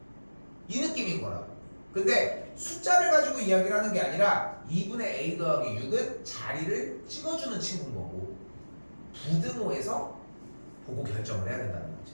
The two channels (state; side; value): inverted; both; correlation -1.00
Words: 이 느낌인 거라고. 근데 숫자를 가지고 이야기를 하는 게 아니라 2분의 a 더하기 6은 자리를 찍어주는 친구인 거고 부등호에서 보고 결정을 해야 된다는 거지.